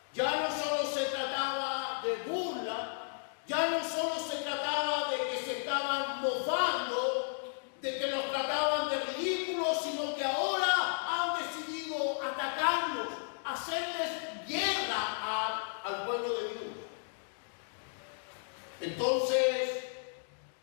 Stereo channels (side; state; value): right; silent; digital silence